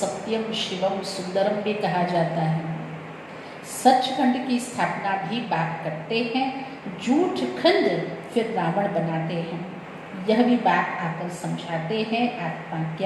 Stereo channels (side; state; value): both; identical; correlation 1.00